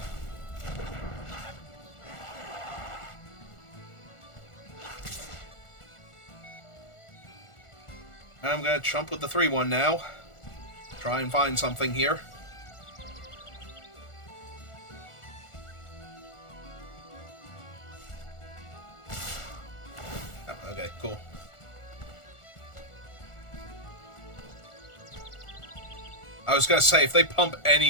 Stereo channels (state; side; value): late; right; 1.4 ms